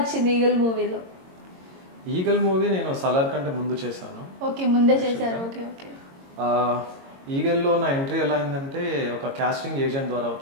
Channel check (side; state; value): left; late; 22 ms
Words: ఈగల్ మూవీలో? ఈగల్ మూవీ నేను సలార్ కంటే ముందు చేశాను. ఓకే, ముందే చేశారు. Okay okay. ఈగల్లో నా ఎంట్రీ ఎలా అయిందంటే ఒక కాస్టింగ్ ఏజెంట్ ద్వారా